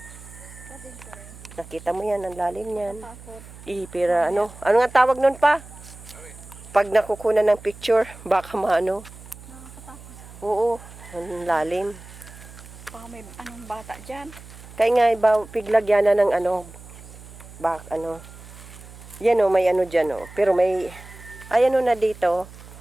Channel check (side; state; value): right; noise; hum, 18 dB below the sound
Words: Kadin ko rin. Nakita mo yan. Ang lalim yan. Takot. Pera ano. Ano nga tawag nun pa? Pag nakukunan ng picture, baka maano. Nakakatakot. Oo. Ang lalim. Baka may anong bata dyan. Kaya nga, piglagyan na ng ano. Ano. Yan o, may ano dyan o. Pero may, ay ano na dito.